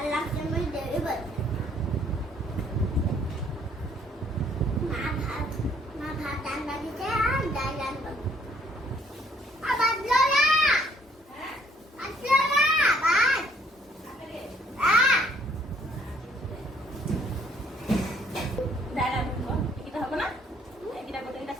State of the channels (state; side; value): normal; both; correlation 0.63